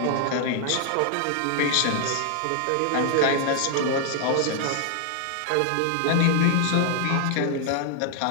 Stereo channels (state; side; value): different; both; correlation 0.00